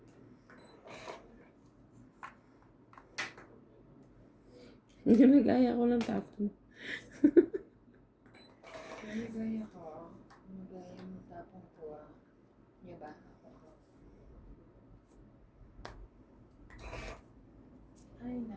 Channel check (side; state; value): both; identical; correlation 1.00